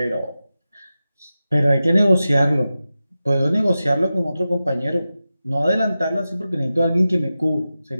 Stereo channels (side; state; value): both; inverted; correlation -0.93